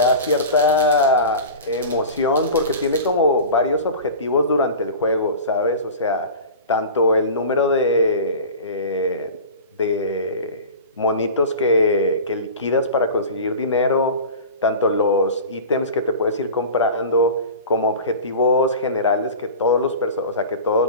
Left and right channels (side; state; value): both; inverted; correlation -0.34